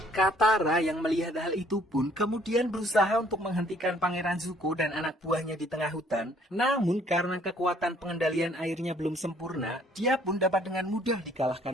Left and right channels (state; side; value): normal; both; correlation 0.61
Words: Katara yang melihat hal itu pun kemudian berusaha untuk menghentikan Pangeran Zuko dan anak buahnya di tengah hutan. Namun karena kekuatan pengendalian airnya belum sempurna, dia pun dapat dengan mudah